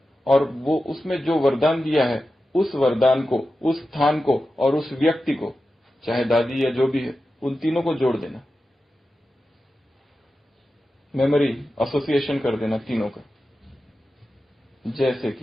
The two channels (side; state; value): both; normal; correlation 0.92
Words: और वो उसमें जो वरदान दिया है उस वरदान को, उस स्थान को और उस व्यक्ति को, चाहे दादी या जो भी है, उन तीनों को जोड़ देना, मेमोरी एसोसिएशन कर देना तीनों का। जैसे